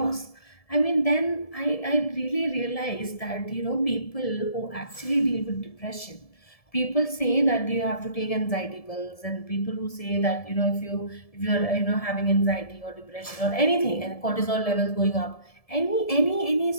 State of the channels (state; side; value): late; right; 1.7 ms